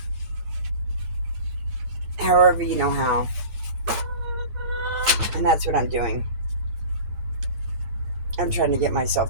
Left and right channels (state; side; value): late; left; 9.9 ms